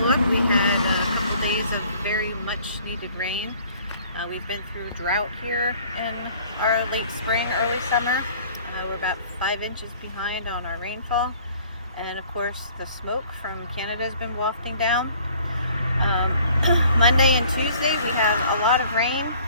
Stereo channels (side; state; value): both; inverted; correlation -0.54